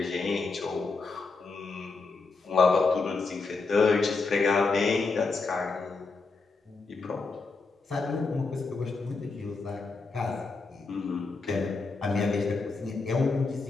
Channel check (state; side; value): quieter; right; 4.1 dB